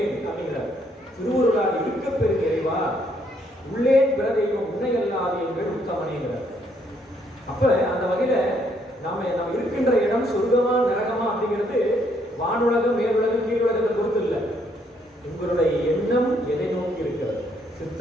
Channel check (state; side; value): normal; both; correlation 0.70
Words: அப்படிங்கிறார். திருவுருளால் இருக்க பெரும் இறைவா உள்ளேன் பிற தெய்வம் உன்னை அல்லாது எங்கள் உத்தமனேங்கிறார். அப்ப அந்த வகையில நாம இருக்கின்ற இடம் சொர்க்கமா நரகமா அப்படிங்கிறது வானுலகம் மேலுலகம் கீழுலகத்தை பொறுத்து இல்லை. உங்களுடைய எண்ணம் எதை நோக்கி இருக்கிறது.